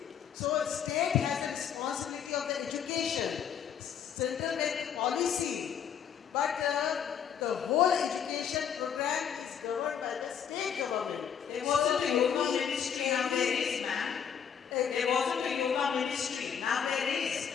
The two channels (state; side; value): quieter; right; 8.0 dB